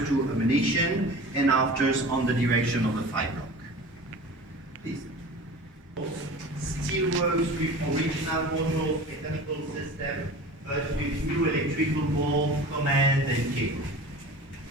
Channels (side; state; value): both; normal; correlation 0.38